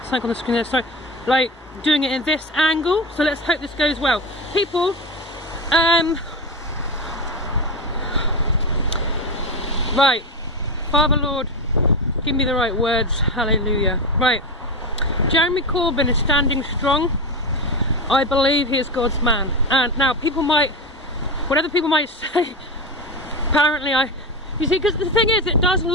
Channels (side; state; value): both; normal; correlation 0.19